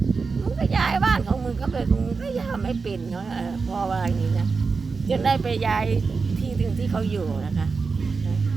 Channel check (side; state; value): left; quieter; 4.6 dB